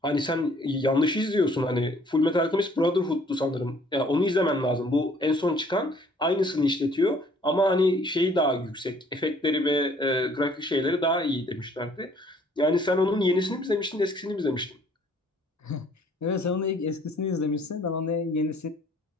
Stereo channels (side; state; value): both; normal; correlation 0.59